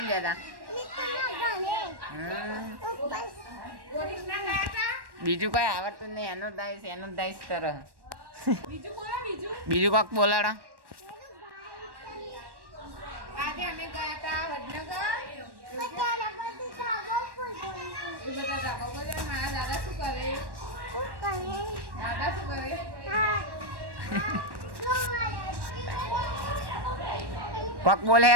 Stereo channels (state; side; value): late; left; 1.1 ms